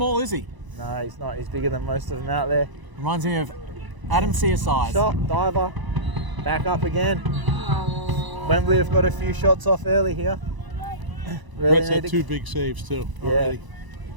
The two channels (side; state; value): left; late; 1.0 ms